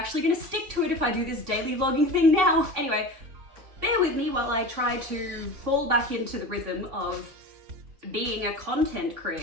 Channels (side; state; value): left; late; 3.6 ms